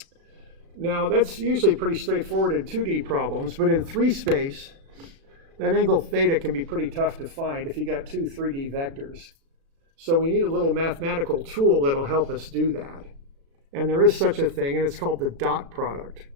Now that's usually pretty straightforward in 2D problems, but in 3 space, that angle theta can be pretty tough to find if you got 2 3D vectors. So we need a little mathematical tool that'll help us do that. And there is such a thing, and it's called the dot product.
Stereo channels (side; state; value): left; late; 36 ms